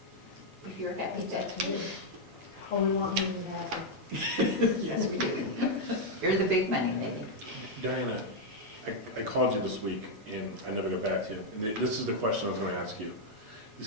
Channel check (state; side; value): normal; both; correlation -0.01